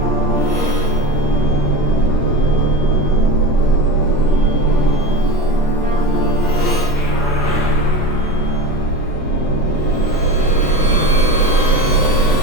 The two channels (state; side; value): late; right; 7.5 ms